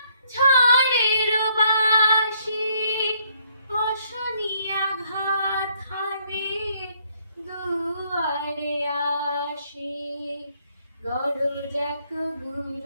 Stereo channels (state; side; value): inverted; both; correlation -0.69